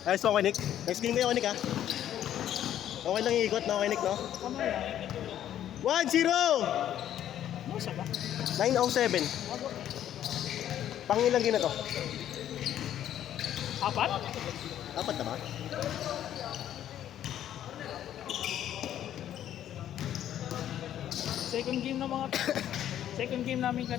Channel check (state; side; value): quieter; right; 11.1 dB